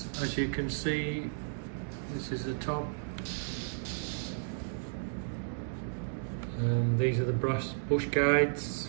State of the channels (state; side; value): silent; left; digital silence